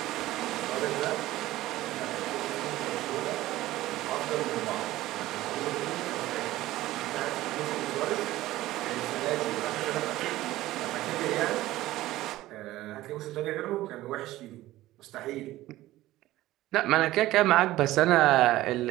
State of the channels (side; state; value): left; quieter; 16.2 dB